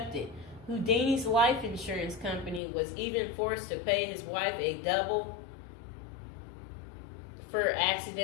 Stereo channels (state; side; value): drops out; right; at 2.6 s